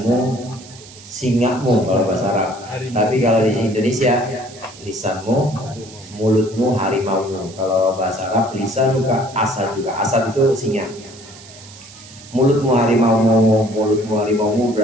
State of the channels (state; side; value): noise; right; hiss, 19 dB below the sound